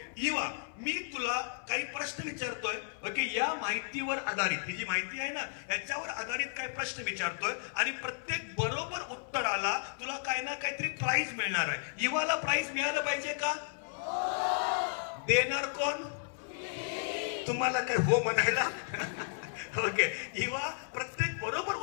Iva, मी तुला काही प्रश्न विचारतोय. ओके, या माहितीवर आधारित, ही जी माहिती आहे ना याच्यावर आधारित काही प्रश्न विचारतोय आणि प्रत्येक बरोबर उत्तराला तुला काय ना काहीतरी प्राइज मिळणार आहे. इवाला प्राइज मिळालं पाहिजे का? देणार कोण? तुम्हाला काय हो म्हणायला? ओके, इवा, प्रत्येक बरोबर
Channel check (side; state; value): right; silent; 55 dB below the other